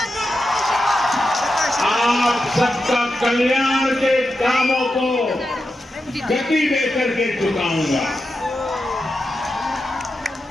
आप सबका कल्याण के कामों को गति देकर के चुकाऊंगा।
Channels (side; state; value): both; normal; correlation 0.89